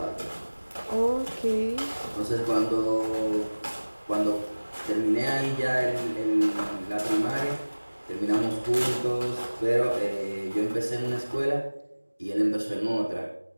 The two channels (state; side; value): inverted; both; correlation -1.00